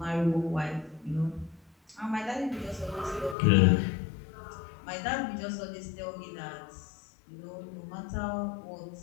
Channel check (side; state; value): right; drops out; at 3.4 s